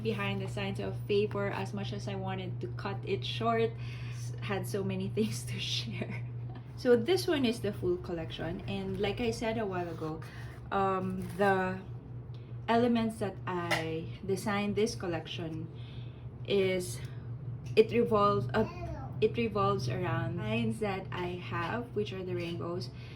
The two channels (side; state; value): both; identical; correlation 1.00